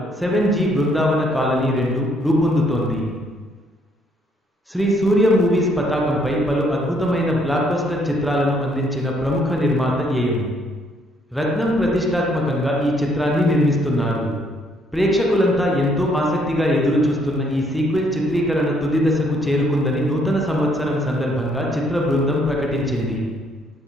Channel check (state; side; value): normal; both; correlation 0.68